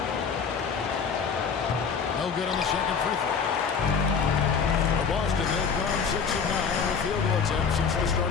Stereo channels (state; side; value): quieter; right; 6.0 dB